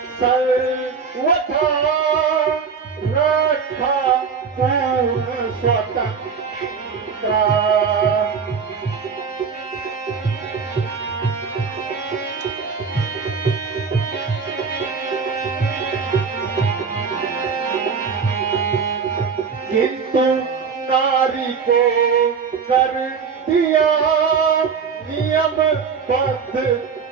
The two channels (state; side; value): quieter; left; 5.8 dB